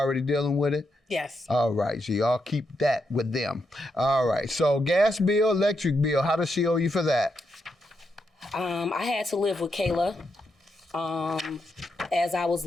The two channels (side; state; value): both; normal; correlation 0.82